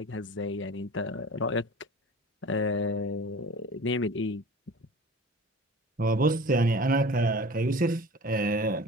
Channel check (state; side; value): normal; both; correlation 0.39